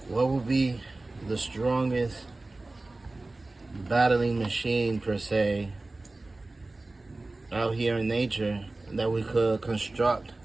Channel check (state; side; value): quieter; left; 3.1 dB